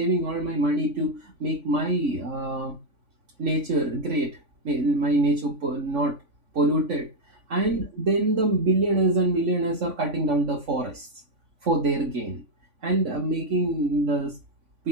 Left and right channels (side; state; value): left; late; 3.5 ms